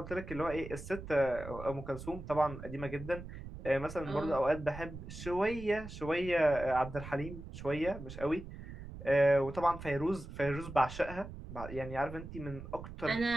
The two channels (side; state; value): right; noise; rumble, 11 dB below the sound